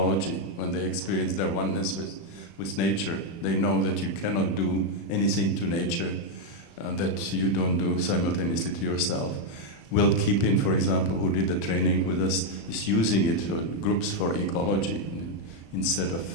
when they experience their oneness with nature. They know that you cannot do anything to nature that you don't do simultaneously to yourself. Will Keepin, for example, who did the training with us, is using it for groups for ecology instead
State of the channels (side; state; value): right; late; 36 ms